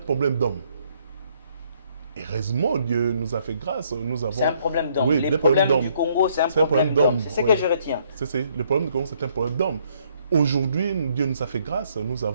problème d'homme. Heureusement, Dieu nous a fait grâce. C'est un problème d'homme. Oui, les problèmes du Congo, c'est un problème d'homme. C'est ce que je retiens. Le problème du Congo, c'est un problème d'homme. Aujourd'hui, Dieu nous a fait grâce. Nous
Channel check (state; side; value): inverted; both; correlation -0.68